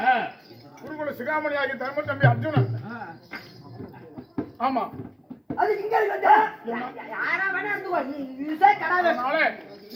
குருகுல சிகாமணி ஆகிய தர்ம தம்பி அர்ஜுனன். ஆமா. அது இங்க இருக்கு. யாரா வேணா இருந்துக்கோ. நீ யூஸே கடாவே. அதனால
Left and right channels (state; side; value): identical; both; correlation 1.00